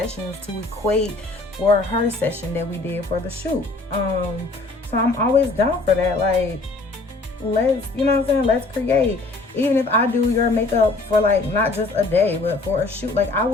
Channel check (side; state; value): right; quieter; 3.3 dB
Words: to equate for her session that we did for the shoot. So I'm always down for that. Like, let's, you know what I'm saying? Let's create. Even if I do your makeup for, like, not just a day, but for a shoot, like, I